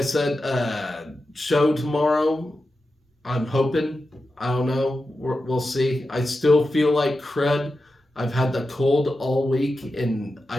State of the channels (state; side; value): normal; both; correlation 0.91